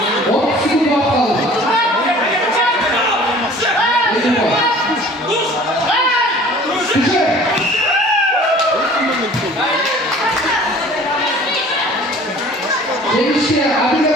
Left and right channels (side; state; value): both; normal; correlation 0.47